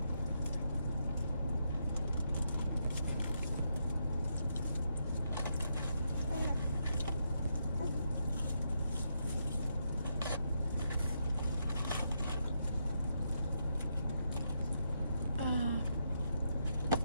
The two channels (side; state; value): both; inverted; correlation -0.80